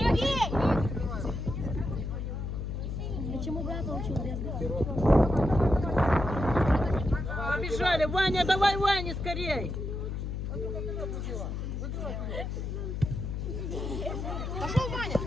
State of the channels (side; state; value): left; noise; hum, 4 dB below the sound